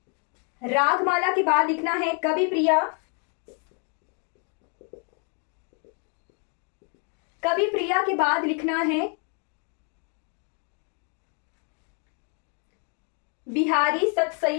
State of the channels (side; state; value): right; quieter; 38.6 dB